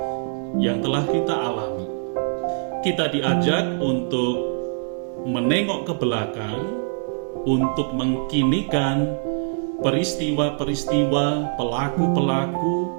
yang telah kita alami. Kita diajak untuk menengok ke belakang, untuk mengkinikan peristiwa-peristiwa, pelaku-pelaku,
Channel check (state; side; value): silent; left; digital silence